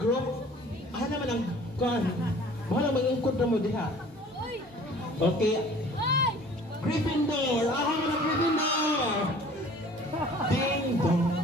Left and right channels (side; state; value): both; normal; correlation 0.49